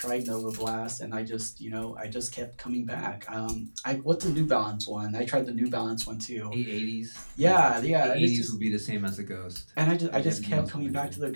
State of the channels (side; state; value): both; inverted; correlation -1.00